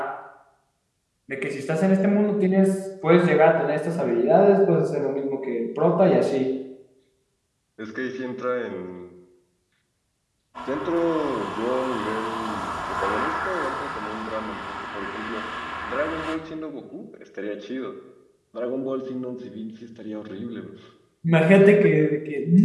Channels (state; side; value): identical; both; correlation 1.00